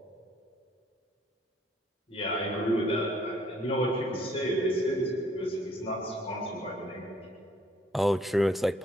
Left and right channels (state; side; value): normal; both; correlation 0.64